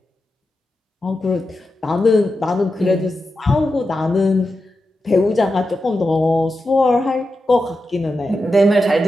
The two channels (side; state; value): both; normal; correlation 0.89